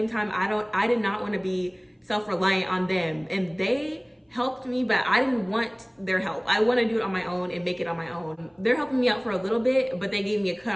time, I did not want to be self-reliant on them. And they helped me, but I didn't want their help. I want to do it on my own and make it on my own. They're helping me out for a little bit, but they gave me a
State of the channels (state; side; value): identical; both; correlation 1.00